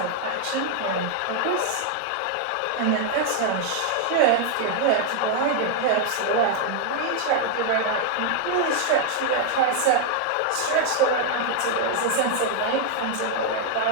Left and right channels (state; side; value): different; both; correlation 0.00